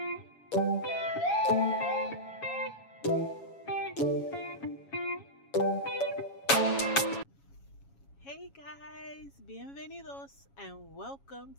guys, bienvenidos and welcome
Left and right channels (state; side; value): late; right; 7.2 ms